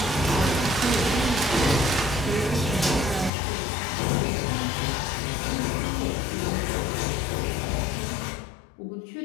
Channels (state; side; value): drops out; right; at 3.3 s